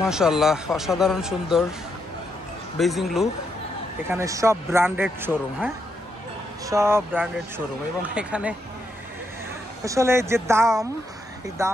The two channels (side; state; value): both; normal; correlation 0.79